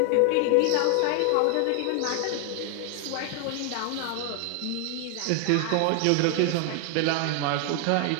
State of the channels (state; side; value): different; both; correlation 0.00